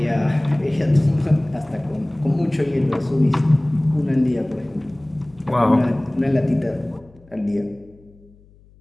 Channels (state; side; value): noise; left; hum, 28 dB below the sound